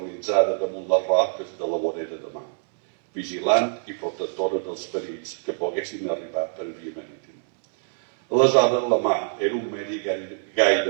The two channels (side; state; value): left; silent; 62 dB below the other